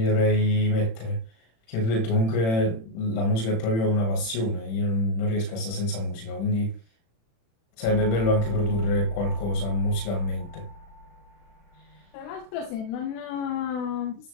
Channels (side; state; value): right; late; 36 ms